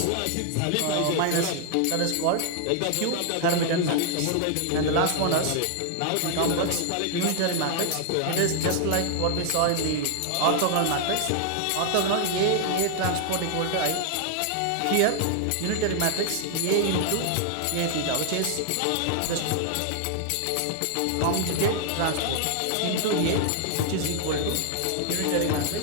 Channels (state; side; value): different; both; correlation 0.00